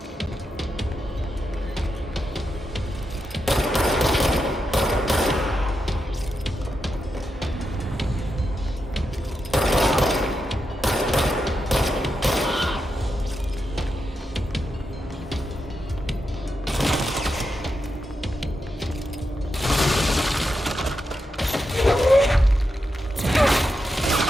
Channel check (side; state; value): both; normal; correlation 0.86